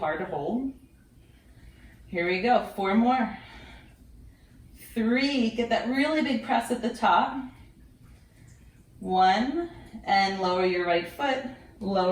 to hold. Here we go, 4 more. 3, get that really big press at the top. 1, and lower your right foot,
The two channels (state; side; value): identical; both; correlation 1.00